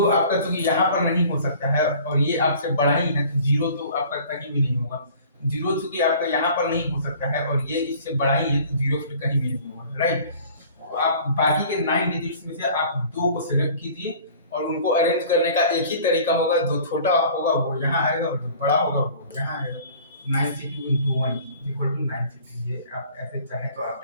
चूंकि यहाँ पर नहीं हो सकता है और ये आपसे बड़ा ही है, तो जीरो तो आपका कहीं भी नहीं होगा। जीरो चूंकि आपका यहाँ पर नहीं हो सकता है और ये इससे बड़ा ही है, तो जीरो फिर कहीं भी नहीं होगा, राइट। तो आप बाकी के 9 डिजिट्स में से आप दो को सिलेक्ट कीजिए और उनको अरेंज करने का एक ही तरीका होगा, जो छोटा होगा वो यहाँ आएगा और जो बड़ा होगा वो यहाँ आएगा। 9c2 into 1 equal to 9c2, ये आप ऐसे चाहें तो आप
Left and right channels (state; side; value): inverted; both; correlation -0.49